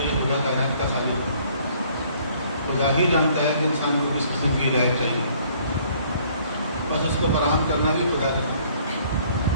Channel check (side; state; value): both; inverted; correlation -0.60